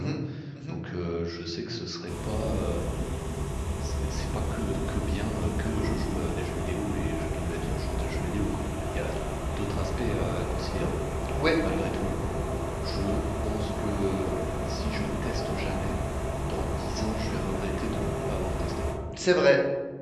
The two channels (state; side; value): identical; both; correlation 1.00